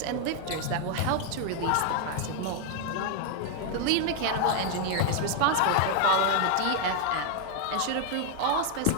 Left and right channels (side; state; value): both; different; correlation 0.00